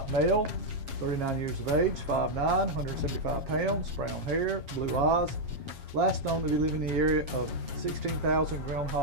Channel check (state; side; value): late; left; 7.3 ms